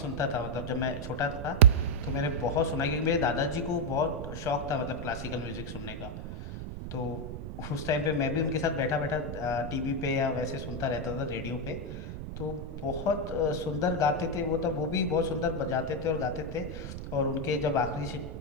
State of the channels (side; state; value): right; noise; rumble, 8 dB below the sound